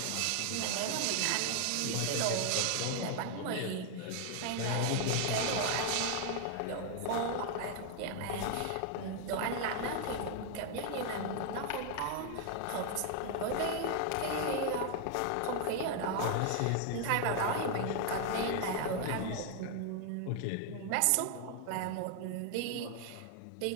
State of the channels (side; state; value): both; different; correlation 0.00